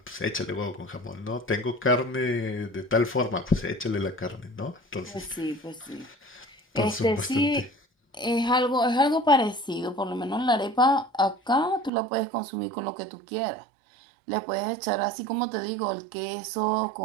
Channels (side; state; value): left; drops out; at 11.9 s